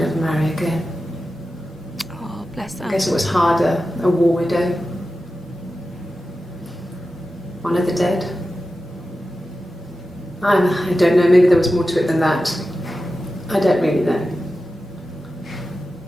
marry again. Oh, bless her. I guess it was harder, a war widow. One of the dead. I don't know, maybe there was more to it than that. I don't really know.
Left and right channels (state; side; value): normal; both; correlation 0.93